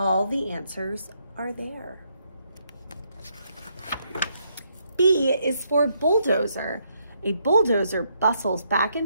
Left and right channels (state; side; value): inverted; both; correlation -0.75